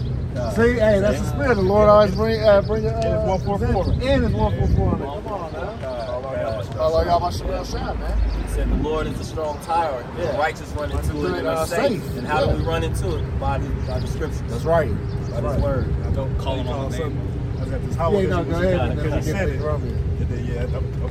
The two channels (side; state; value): both; identical; correlation 1.00